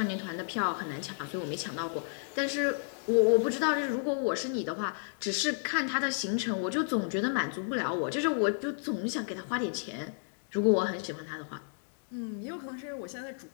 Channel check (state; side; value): silent; right; digital silence